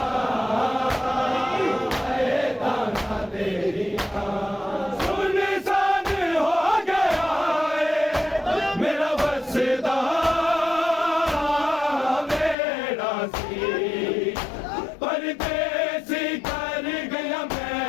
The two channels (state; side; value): drops out; right; at 12.6 s